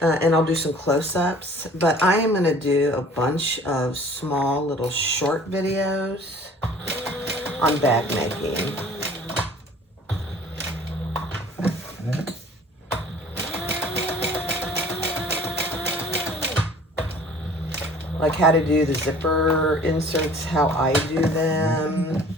I'll do some close-ups. But I am going to do a bunch of small little short videos on bag making. Like how to do the zipper inserts, how I do them.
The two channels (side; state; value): both; normal; correlation 0.50